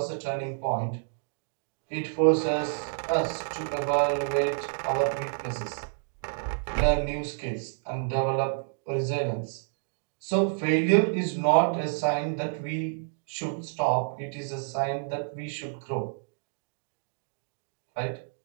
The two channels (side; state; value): left; silent; digital silence